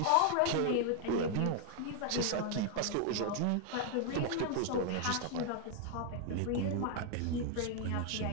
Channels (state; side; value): different; both; correlation 0.00